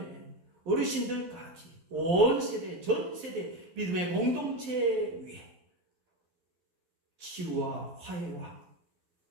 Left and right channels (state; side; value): late; left; 11 ms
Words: 어르신들까지 온 세대 전 세대 믿음의 공동체 위에 치유와 화해와